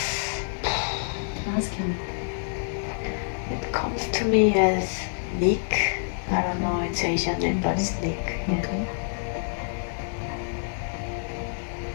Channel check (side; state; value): right; silent; digital silence